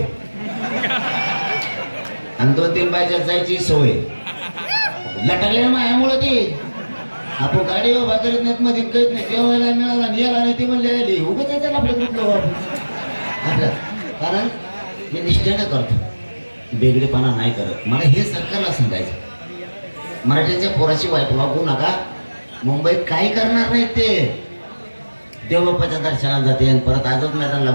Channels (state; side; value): inverted; both; correlation -1.00